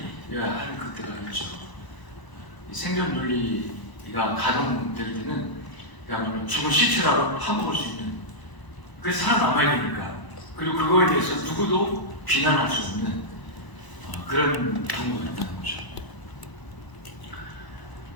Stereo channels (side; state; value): right; late; 1.0 ms